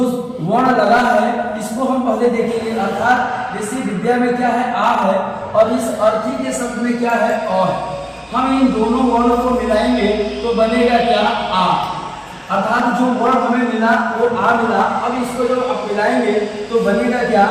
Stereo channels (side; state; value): both; identical; correlation 1.00